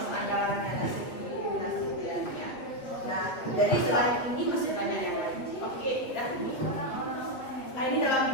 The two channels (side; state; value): right; late; 8.1 ms